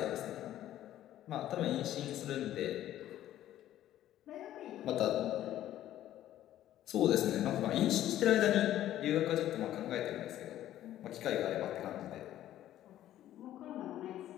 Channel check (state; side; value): quieter; right; 12.8 dB